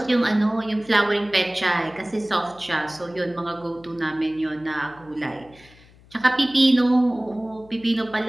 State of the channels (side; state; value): left; noise; hum, 26 dB below the sound